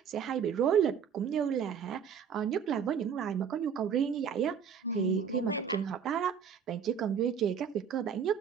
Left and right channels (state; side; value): quieter; left; 7.3 dB